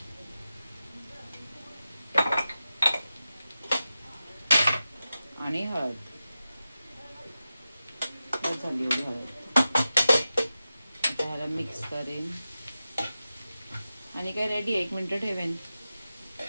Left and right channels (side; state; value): both; inverted; correlation -0.92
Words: आणि हळद. झाली एवढी हळद. आता ह्याला मिक्स करेन आणि काय रेडी. 1 मिनिट ठेवेन.